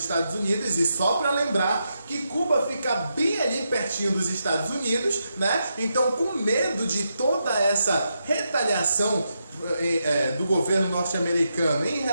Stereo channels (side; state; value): both; inverted; correlation -0.84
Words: Unidos, e só para lembrar que Cuba fica bem ali pertinho dos Estados Unidos, né? Então, com medo de toda essa retaliação do governo norte-americano em